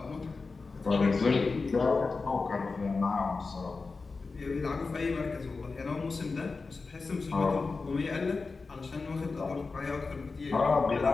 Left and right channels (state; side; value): quieter; right; 4.2 dB